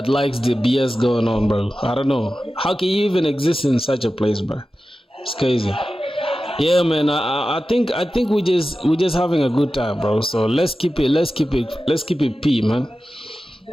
likes the BS going on, bro. I don't know. How can you even exist in such a place, bro? It's crazy. Yeah, man. I think we just having a good time, bro. So let's keep it P, man.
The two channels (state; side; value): normal; both; correlation 0.94